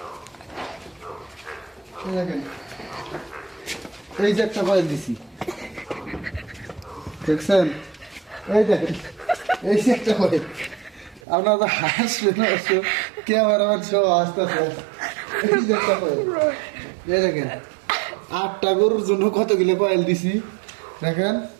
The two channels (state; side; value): drops out; left; at 11.2 s